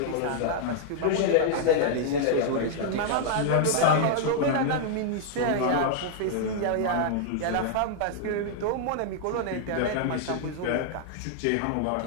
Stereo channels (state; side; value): different; both; correlation -0.01